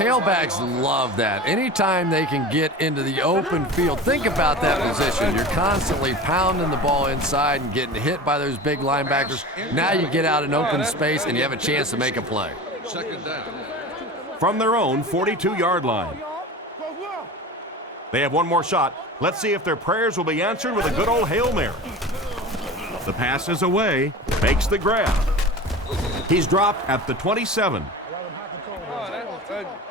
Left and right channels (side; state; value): both; normal; correlation 0.34